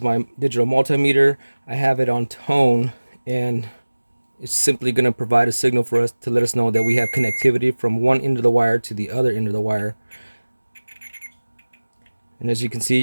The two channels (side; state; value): both; inverted; correlation -1.00